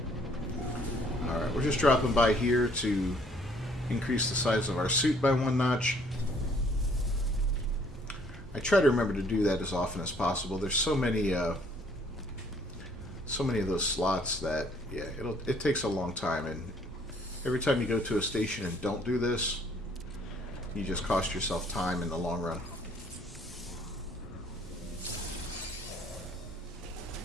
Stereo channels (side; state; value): both; normal; correlation 0.61